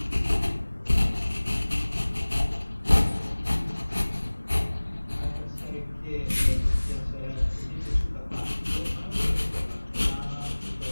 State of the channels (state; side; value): inverted; both; correlation -1.00